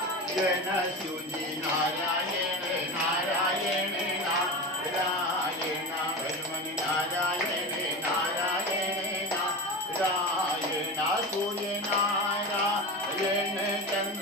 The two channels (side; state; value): both; normal; correlation 0.25